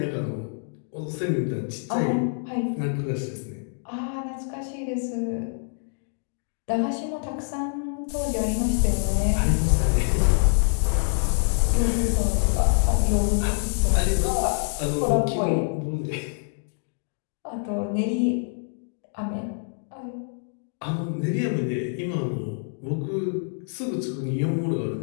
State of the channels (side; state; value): right; silent; digital silence